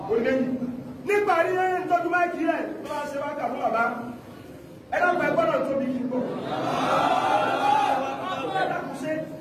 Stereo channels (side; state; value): both; identical; correlation 1.00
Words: ó lẹ́yìn nígbà rí ẹni tọ́jú máìkì rẹ̀ tó bá ṣe wákà fún bàbá ẹ dákun ẹ gbọ́dọ̀ tóbi kí n gbọ́ ẹ dákun ṣe